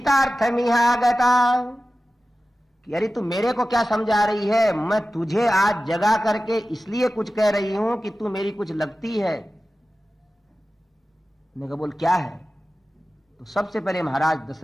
कि अरे तू मेरे को क्या समझा रही है, मैं तुझे आज जगा करके इसलिए कुछ कह रही हूं कि तू मेरी कुछ लगती है। मैंने कहा बोल क्या है? तो सबसे पहले महाराज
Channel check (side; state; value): both; normal; correlation 0.95